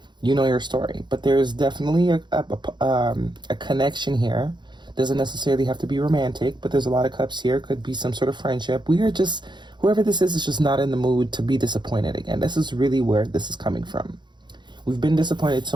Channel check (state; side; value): late; left; 0.22 ms